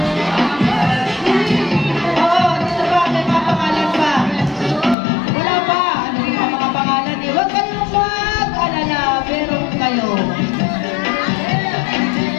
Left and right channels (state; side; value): drops out; right; at 5.0 s